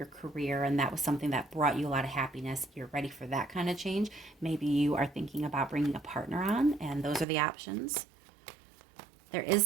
career and that was something that brought you a lot of happiness. You're ready for that kind of change. Maybe you are thinking about bringing a partner on, and those are the options. There is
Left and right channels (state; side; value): drops out; left; at 7.2 s